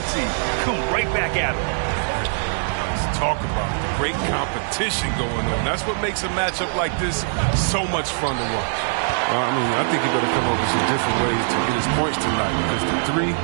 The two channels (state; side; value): silent; left; digital silence